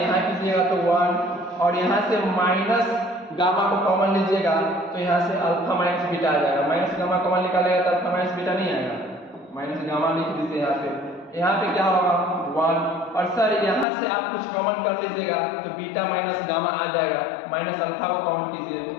कीजिएगा तो 1, और यहाँ से माइनस गामा को कॉमन लीजिएगा तो यहाँ से अल्फा माइनस बीटा आ जाएगा। माइनस गामा कॉमन निकालेगा तो अल्फा माइनस बीटा नहीं आएगा, माइनस गामा लिख दीजिए यहाँ पे। यहाँ पे क्या होगा 1, और सर यहाँ से आप कुछ कॉमन कर लीजिएगा तो बीटा माइनस गामा आ जाएगा, माइनस अल्फा को कॉमन कीजिए।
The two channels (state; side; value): drops out; right; at 13.9 s